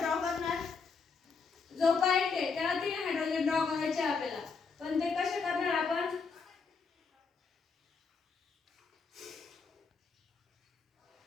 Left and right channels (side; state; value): right; quieter; 5.0 dB